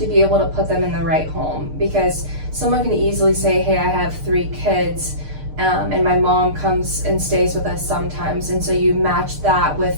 be able to put them in the right home. Because someone can easily say, hey, I have 3 kids, and my mom comes and stays with us sometimes, and so you match that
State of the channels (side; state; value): left; late; 6.6 ms